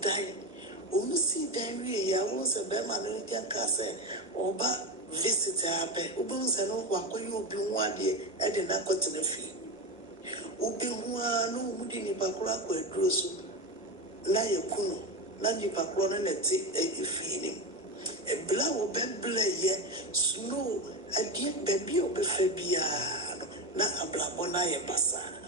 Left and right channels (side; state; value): both; normal; correlation 0.19